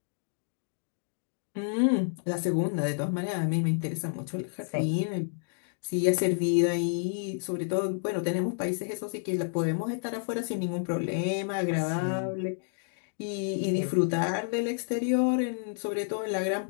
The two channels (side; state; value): right; silent; digital silence